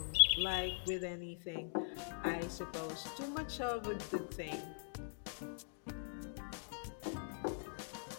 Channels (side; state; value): right; silent; digital silence